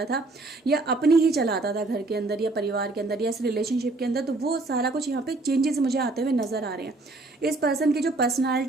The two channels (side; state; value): left; quieter; 3.1 dB